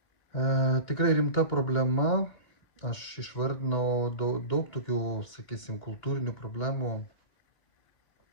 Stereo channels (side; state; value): right; late; 2.8 ms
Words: Tikrai rimta problema. Aš išvardinau daug tokių, sakysim, kultūrinių problemų,